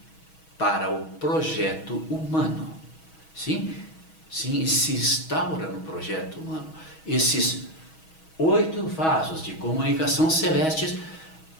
para o projeto humano. Sim, se instaura no projeto humano. Esses 8 vasos de comunicação celestes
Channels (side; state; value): right; late; 6.3 ms